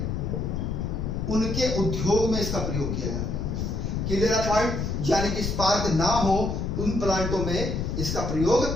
उनके उद्योग में इसका प्रयोग किया जाता है। Clear point. यानी कि स्पार्क ना हो उन प्लांटों में इसका प्रयोग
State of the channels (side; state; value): left; noise; rumble, 2 dB below the sound